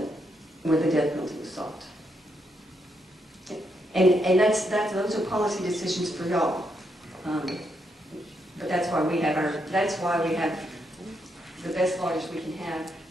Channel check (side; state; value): both; normal; correlation 0.79